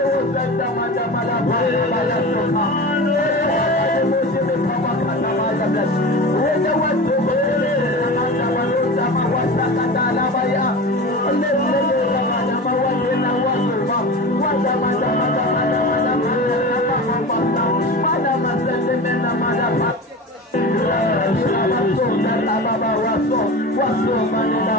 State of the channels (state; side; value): normal; both; correlation 0.30